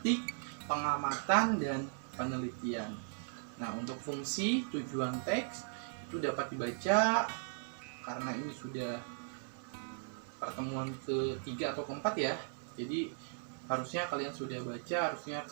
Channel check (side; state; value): left; silent; digital silence